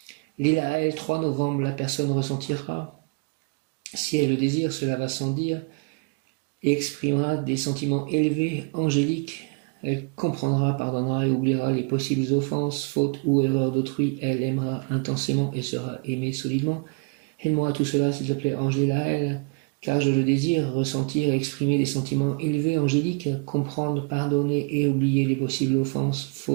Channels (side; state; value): left; quieter; 33.0 dB